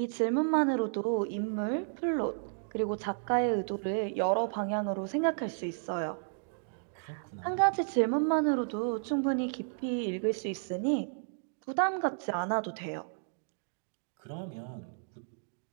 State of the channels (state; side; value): silent; left; digital silence